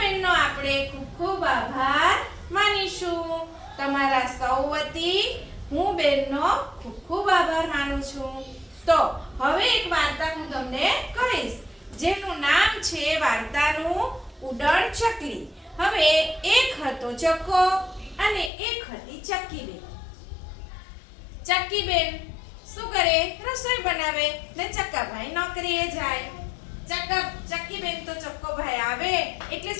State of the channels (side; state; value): right; drops out; at 18.5 s